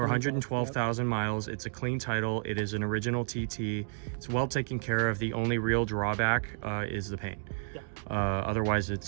112,000 miles. It's a clean title. It is an original TT. It's well taken care of. The only real drawback is the paint. Yeah. Otherwise,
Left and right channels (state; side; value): silent; left; digital silence